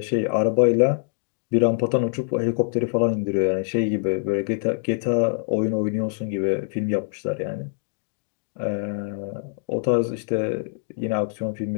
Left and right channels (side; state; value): right; silent; digital silence